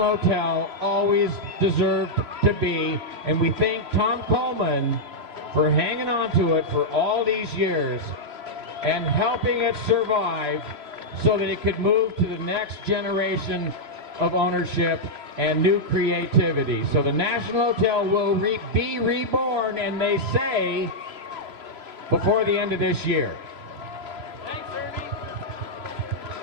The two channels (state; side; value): late; left; 3.0 ms